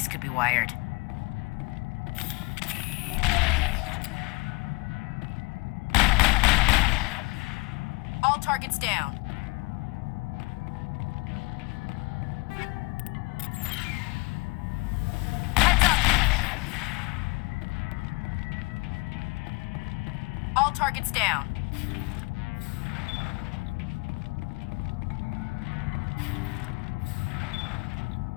could be wired. All targets down. Heads up! All targets down.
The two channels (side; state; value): right; quieter; 27.2 dB